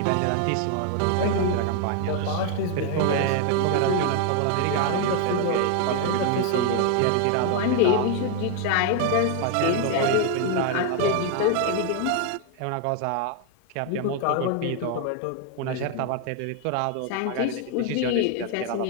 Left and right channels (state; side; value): different; both; correlation 0.00